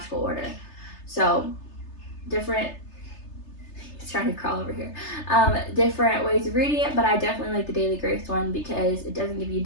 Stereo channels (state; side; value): late; right; 3.3 ms